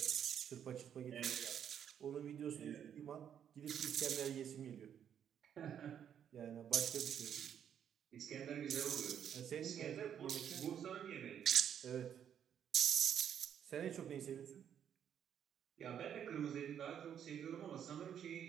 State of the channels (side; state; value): left; quieter; 9.0 dB